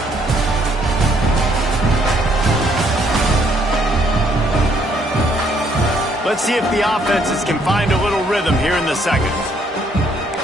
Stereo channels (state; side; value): normal; both; correlation 0.68